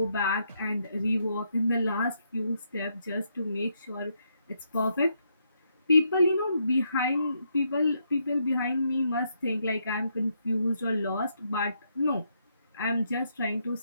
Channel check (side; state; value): both; inverted; correlation -0.77